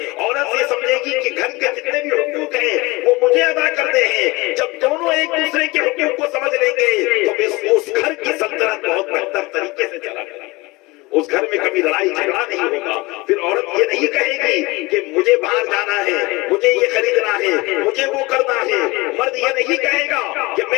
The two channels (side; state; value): right; quieter; 23.0 dB